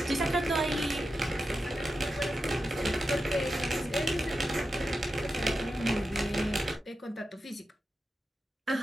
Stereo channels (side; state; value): both; normal; correlation 0.90